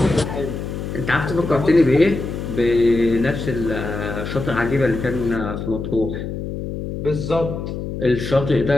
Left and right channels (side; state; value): left; noise; hum, 6 dB below the sound